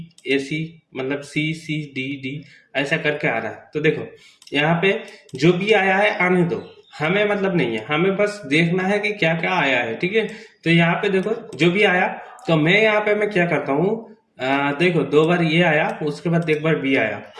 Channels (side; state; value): both; identical; correlation 1.00